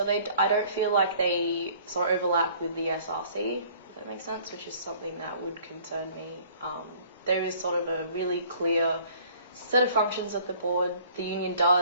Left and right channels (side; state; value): both; inverted; correlation -0.54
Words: I don't feel like they sort of overlap with the SRC, if that makes sense, which is something that would concern me. There is sort of a really clear set of functions that the board, the union